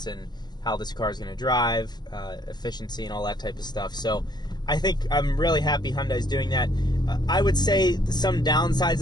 in how this car is going to drive, efficiency, and all that type of stuff. So I think I'm really happy Hyundai's doing that. I would say some downsides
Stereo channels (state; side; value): late; right; 0.21 ms